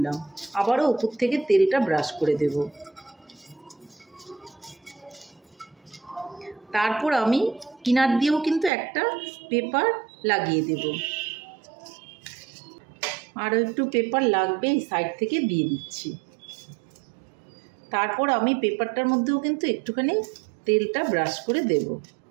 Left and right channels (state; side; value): drops out; left; at 8.7 s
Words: আবারও উপর থেকে তেলটা ব্রাশ করে দেব। তারপর আমি কিনার দিয়েও কিন্তু একটা পেপার লাগিয়ে দেব। আরও একটু পেপার লাগবে, এই সাইড থেকে দিয়ে দিচ্ছি। তারপর আমি পেপারটার মধ্যেও কিন্তু একটুখানি তেলটা ব্রাশ করে দেব।